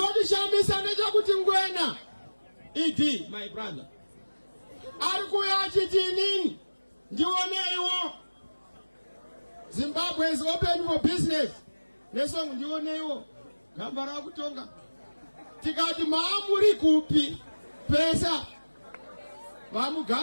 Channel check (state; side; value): inverted; both; correlation -1.00